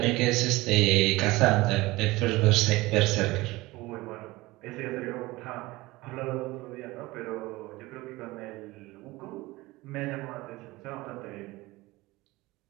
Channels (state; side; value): quieter; left; 20.4 dB